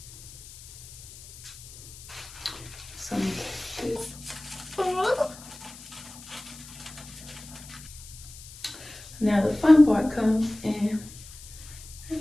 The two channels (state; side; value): noise; left; hiss, 17 dB below the sound